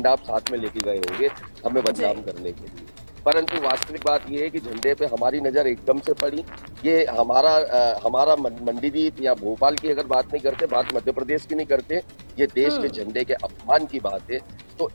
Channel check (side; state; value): both; inverted; correlation -1.00